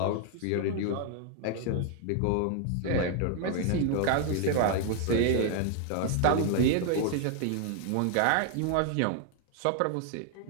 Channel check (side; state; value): both; different; correlation 0.00